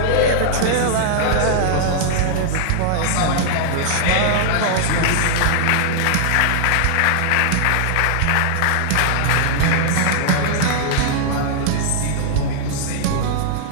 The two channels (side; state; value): both; different; correlation -0.01